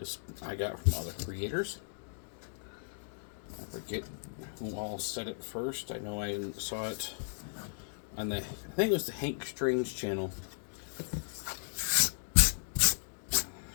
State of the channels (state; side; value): silent; right; digital silence